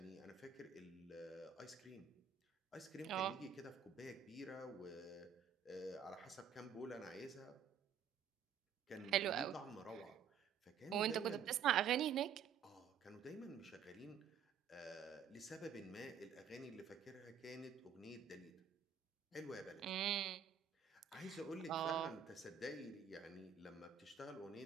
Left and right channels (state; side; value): quieter; left; 7.4 dB